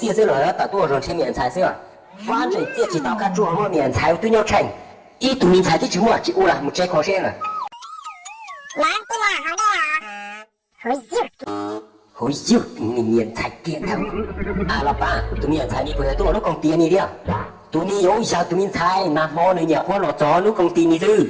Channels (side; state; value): both; identical; correlation 1.00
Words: 些了，打多少钱免财是吧？反正这几道看做我免财对要成，一读免财的指我指我啦，冇再考先了。来，对了，好的啊，好笑，你免财点头。啊，老爸，读免财你不要多，我工地你了。读你有效读免财，那么你要花落咗，你工地你